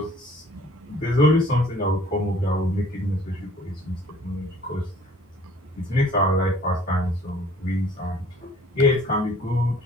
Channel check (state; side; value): normal; both; correlation 0.54